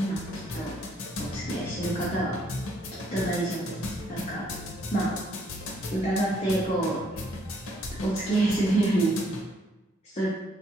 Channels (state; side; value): normal; both; correlation 0.68